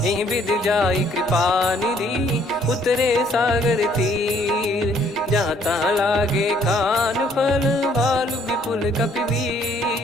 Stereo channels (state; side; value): normal; both; correlation 0.63